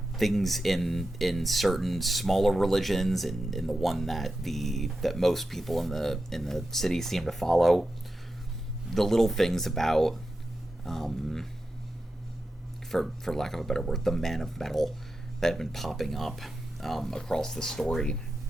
things in certain smaller religions, and in the one that most people in the city seem to follow, the little things about, um, for lack of a better word, the man of metal that have been popping up across the story,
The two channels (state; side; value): normal; both; correlation 0.90